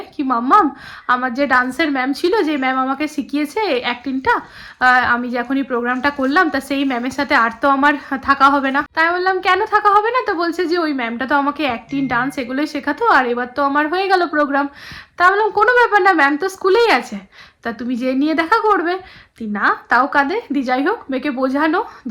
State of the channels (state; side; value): identical; both; correlation 1.00